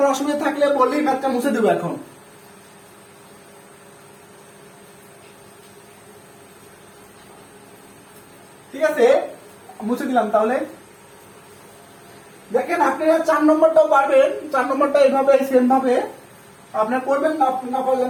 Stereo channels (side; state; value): both; identical; correlation 1.00